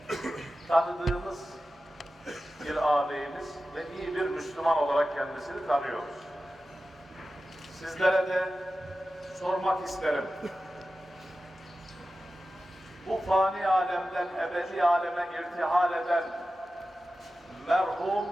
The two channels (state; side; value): normal; both; correlation 0.94